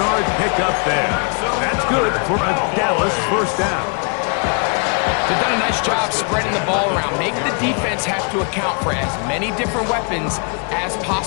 pickup there. That's good for a Dallas first down. They've done a nice job spreading the ball around. Make the defense have to account for as many different weapons as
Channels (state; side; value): quieter; right; 37.6 dB